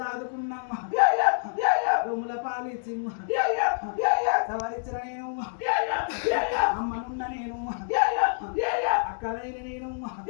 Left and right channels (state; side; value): silent; right; digital silence